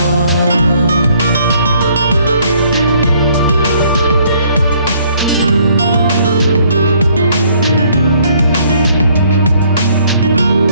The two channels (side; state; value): both; inverted; correlation -0.63